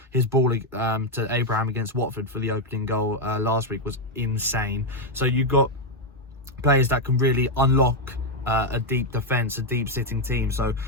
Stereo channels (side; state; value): both; normal; correlation 0.03